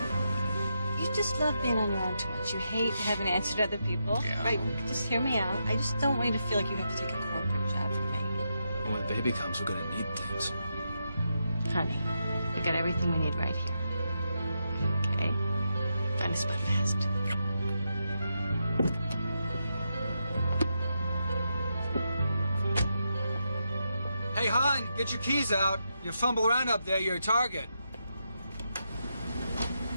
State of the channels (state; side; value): inverted; both; correlation -0.84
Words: You just love being on your own too much. You hate having to answer to other people. Yeah. Right? Just hear me out. I just don't want you to feel like you have to take a corporate job from me. When the baby comes, we're gonna need things. Honey, we got everything we need right here. Okay? Find a spot fast. Hey, hon, get your keys out. You fumble around up there, you're a target.